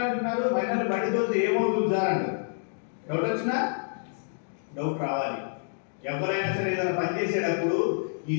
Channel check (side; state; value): right; silent; digital silence